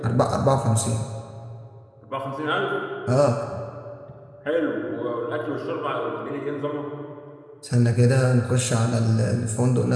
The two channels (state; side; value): identical; both; correlation 1.00